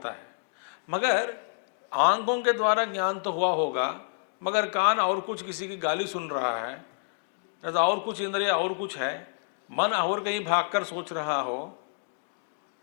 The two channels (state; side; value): silent; right; digital silence